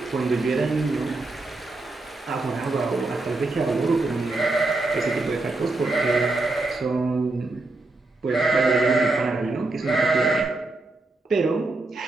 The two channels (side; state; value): left; quieter; 3.1 dB